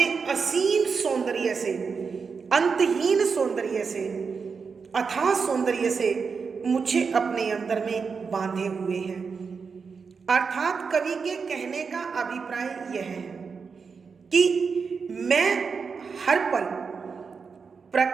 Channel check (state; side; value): quieter; left; 5.4 dB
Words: असीम सौंदर्य से, अंतहीन सौंदर्य से, अथाह सौंदर्य से मुझे अपने अंदर में बांधे हुए हैं। अर्थात कवि के कहने का अभिप्राय यह है कि मैं हर पल